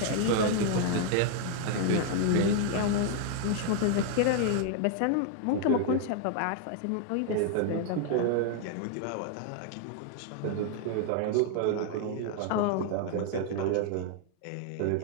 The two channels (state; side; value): different; both; correlation 0.00